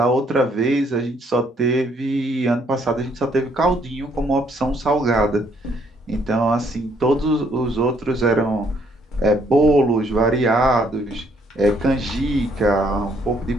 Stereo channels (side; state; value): both; normal; correlation 0.68